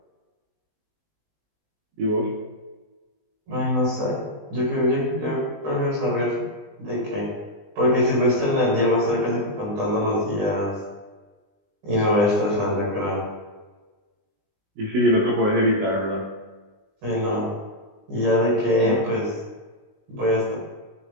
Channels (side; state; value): left; late; 20 ms